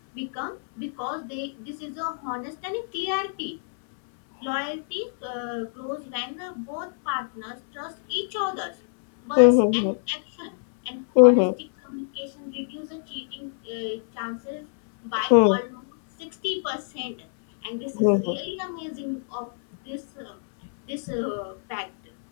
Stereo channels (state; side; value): silent; right; 61 dB below the other